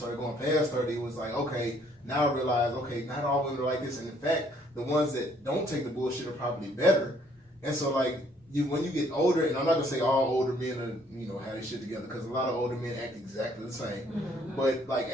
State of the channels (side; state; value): both; normal; correlation 0.64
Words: going past 30, it was like, okay, now I realize, okay, not all women are like this. And in fact, the ones that don't take the bullshit are probably better. And so like when you get older, and I'm not gonna say all older men are, have their shit together, because a lot of older men act exactly the same. But like